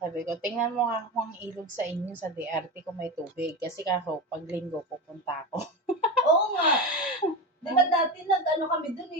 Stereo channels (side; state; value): both; normal; correlation 0.21